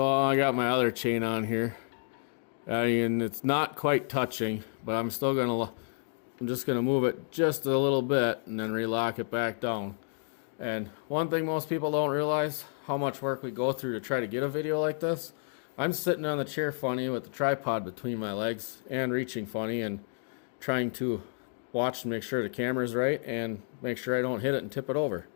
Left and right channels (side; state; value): right; silent; digital silence